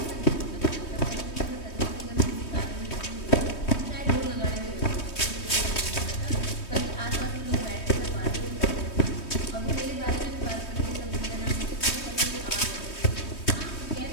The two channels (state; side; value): late; right; 3.2 ms